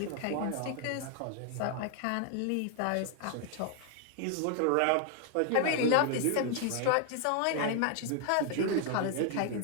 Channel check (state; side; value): different; both; correlation 0.00